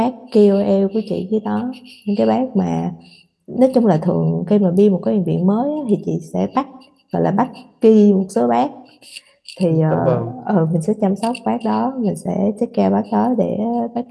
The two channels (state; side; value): identical; both; correlation 1.00